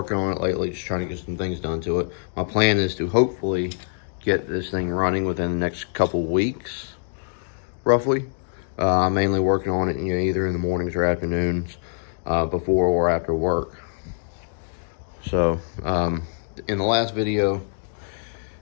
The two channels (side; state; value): right; silent; digital silence